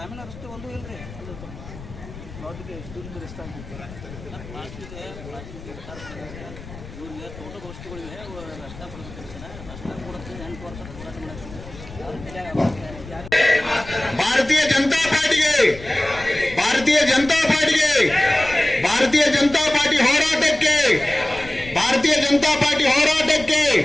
ರಸ್ತೆ ಒಂದು ಇಲ್ರಿ ತೋಟದ ವಸ್ತುಗಳಿವೆ ರಸ್ತೆ ಕೊಡುತ್ತೆ 8 ವರ್ಷ Bharatiya Janata party Bharatiya Janata party Bharatiya Janata party ಹೋರಾಟಕ್ಕೆ भारतीय जनता पार्टी ಹೋರಾಟಕ್ಕೆ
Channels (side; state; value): left; noise; rumble, 15 dB below the sound